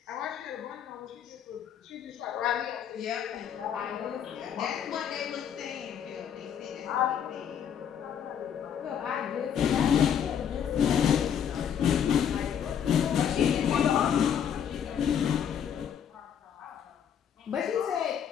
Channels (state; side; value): quieter; right; 8.6 dB